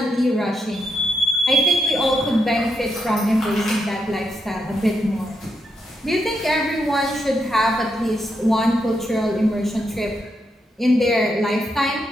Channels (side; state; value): both; normal; correlation 0.82